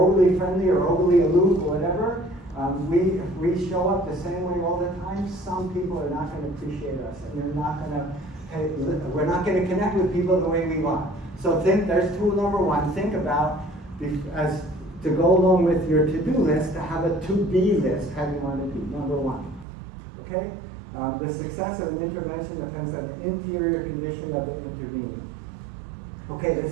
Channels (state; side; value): drops out; left; at 19.7 s